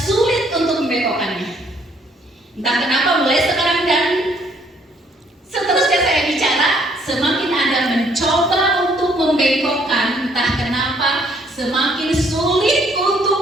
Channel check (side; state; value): both; normal; correlation 0.65